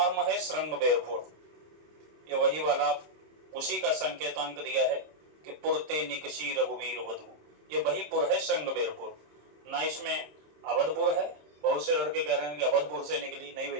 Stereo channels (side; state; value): left; late; 27 ms